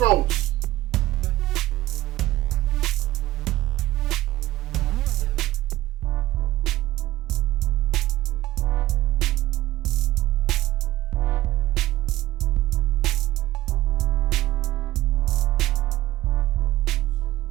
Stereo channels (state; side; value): quieter; left; 16.2 dB